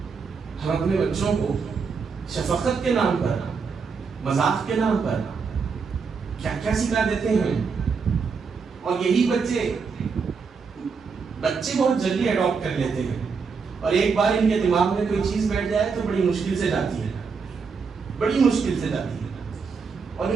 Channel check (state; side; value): quieter; left; 5.3 dB